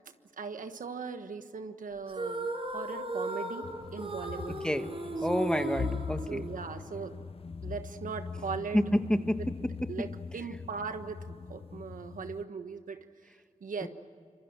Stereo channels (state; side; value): normal; both; correlation 0.77